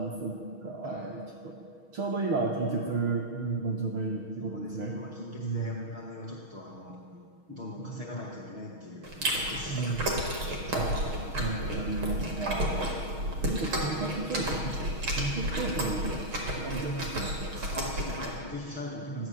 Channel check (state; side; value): late; left; 6.4 ms